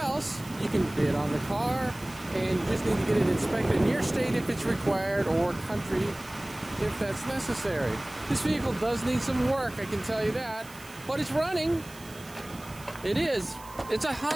you can bid on the car, and you just need to get it inspected in your state if it's required, or country if that's necessary. This vehicle does need some work, I can tell you that, but it's running. It is. It's a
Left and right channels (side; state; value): right; noise; hiss, 20 dB below the sound